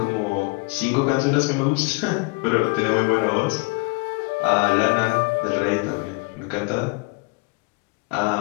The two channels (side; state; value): right; quieter; 28.3 dB